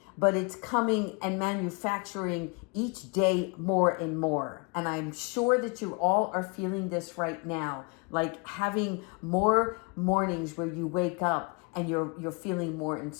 but it's coming and manufacturing each day more and more. And I'm sure that you all are feeling this right now, like having more mornings where you wake up and you're feeling more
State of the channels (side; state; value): right; quieter; 31.1 dB